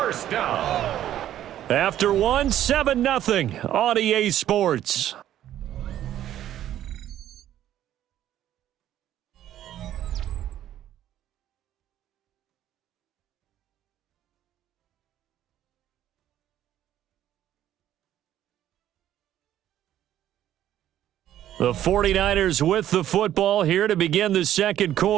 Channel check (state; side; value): quieter; left; 11.9 dB